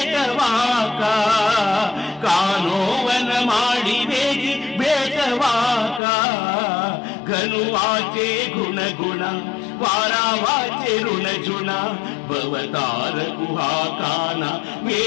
कानोवन माडी वेगी भेटवाका घनुवाचे गुणगुणा वारा वाचे ऋणजुना भवतार कुहाकाना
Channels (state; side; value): drops out; right; at 6.0 s